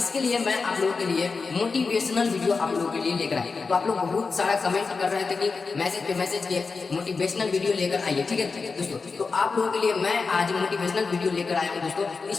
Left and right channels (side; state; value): right; quieter; 4.5 dB